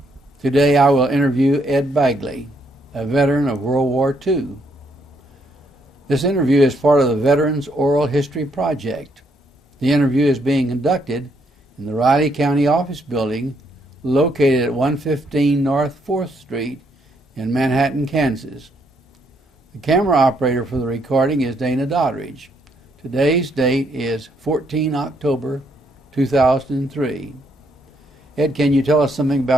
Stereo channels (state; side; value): normal; both; correlation 0.73